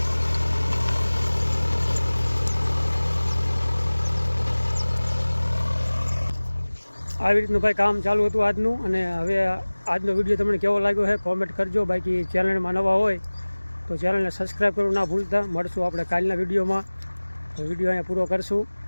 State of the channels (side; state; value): both; inverted; correlation -1.00